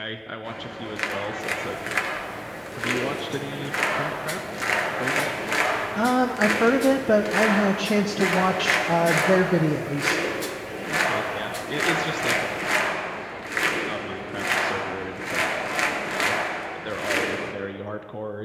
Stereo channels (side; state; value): both; identical; correlation 1.00